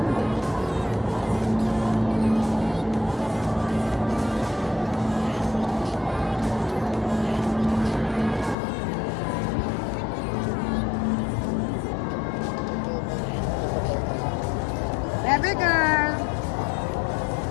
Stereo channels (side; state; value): right; drops out; at 8.6 s